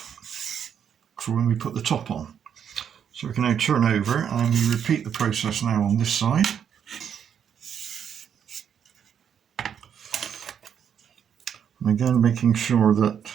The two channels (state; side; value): quieter; left; 8.3 dB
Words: for when we put the top on. So we can now turn over and we repeat the process now on this side. And again, making sure that